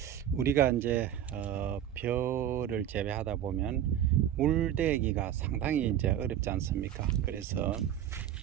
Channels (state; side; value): quieter; left; 10.7 dB